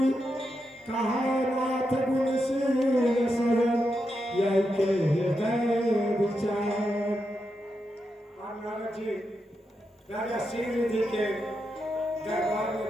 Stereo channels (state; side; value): normal; both; correlation 0.85